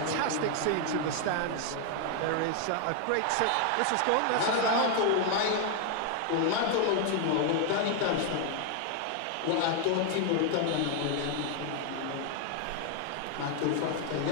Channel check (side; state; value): both; different; correlation 0.00